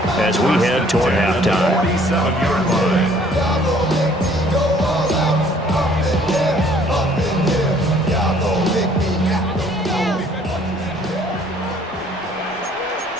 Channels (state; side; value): normal; both; correlation 0.59